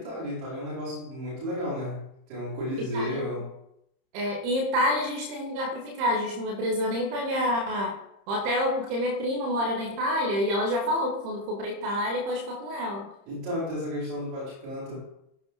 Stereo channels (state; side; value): late; left; 30 ms